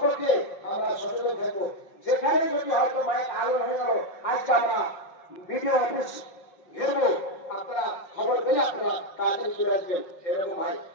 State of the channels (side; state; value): right; late; 5.5 ms